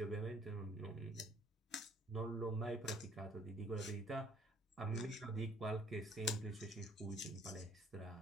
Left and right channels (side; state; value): both; normal; correlation 0.59